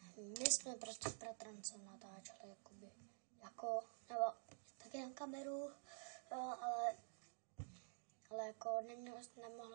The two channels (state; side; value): silent; left; digital silence